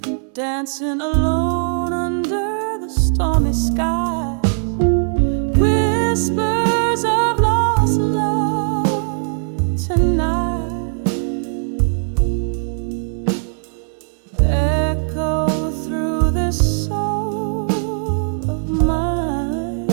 dancing alone under the stormy sky. Whispers of lost love tonight echo through this soul of mine,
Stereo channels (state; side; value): silent; left; 61 dB below the other